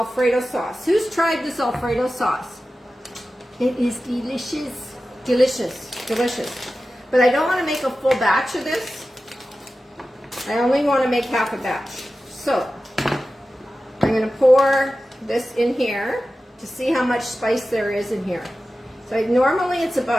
sauce. Who's tried this Alfredo sauce? It is delicious. Delicious. Delicious. But I don't want to make a full batch of this. I only want to make half a batch. So, I'm going to pour this in here to see how much spice there is in here. So, normally it's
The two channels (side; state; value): both; normal; correlation 0.94